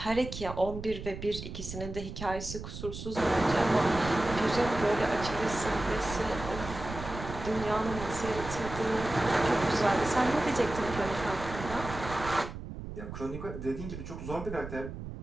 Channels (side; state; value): right; noise; rumble, 9 dB below the sound